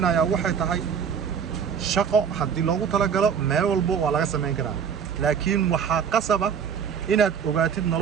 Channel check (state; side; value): quieter; left; 7.3 dB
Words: waxay tahay shaqo haddii loogu talagalo meel walbo waa laga sameyn karaa, laakiin waxaa qasaba inaad ogaatid